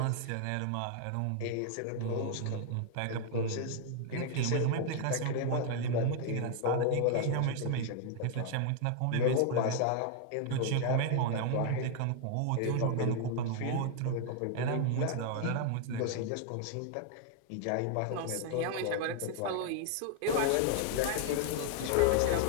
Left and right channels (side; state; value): both; different; correlation 0.00